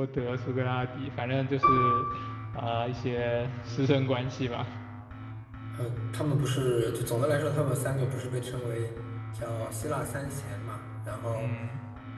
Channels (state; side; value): identical; both; correlation 1.00